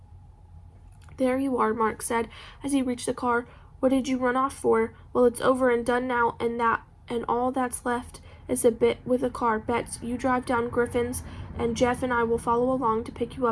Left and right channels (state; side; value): identical; both; correlation 1.00